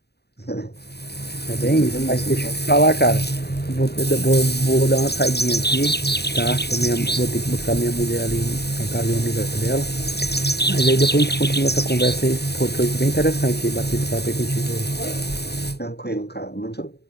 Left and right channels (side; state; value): right; late; 0.48 ms